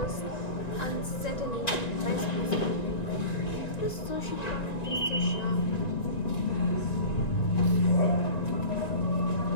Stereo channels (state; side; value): late; right; 1.9 ms